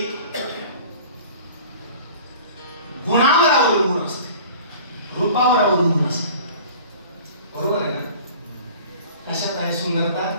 गुणावर अवलंबून असते, रूपावर अवलंबून असते, बरोबर आहे ना? कशात आहे सुंदरता?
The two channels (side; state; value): both; inverted; correlation -0.44